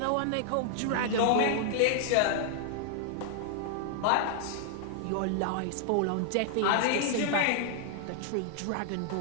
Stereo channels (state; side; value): different; both; correlation 0.00